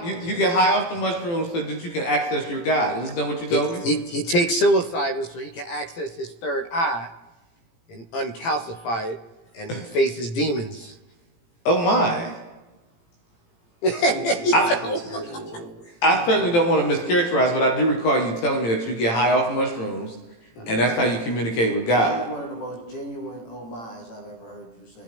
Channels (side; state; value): right; late; 18 ms